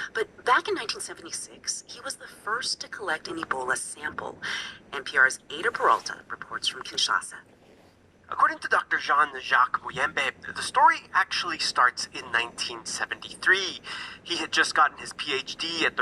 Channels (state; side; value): identical; both; correlation 1.00